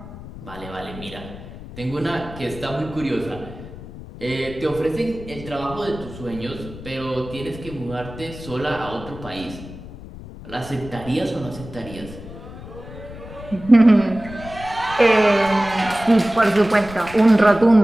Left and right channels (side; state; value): left; noise; rumble, 14 dB below the sound